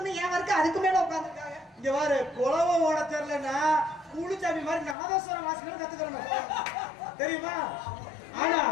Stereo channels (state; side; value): drops out; right; at 5.0 s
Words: என் வர்க்கம் அதுக்கு மேல உட்காந்துருக்காங்க. இங்க பாரு, குலவை ஓட தெரியலன்னா கூலிச்சாமி மாதிரி நாதஸ்வரம் வாசிக்கணும் கத்துக்கணும், தெரியுமா? ஆனா